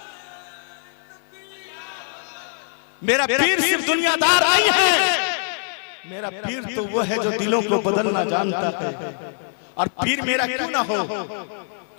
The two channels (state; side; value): silent; right; 55 dB below the other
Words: मेरा पीर सिर्फ दुनियादार नहीं है, मेरा पीर तो वो है जो दिलों को बदलना जानता है। और पीर मेरा क्यों ना हो,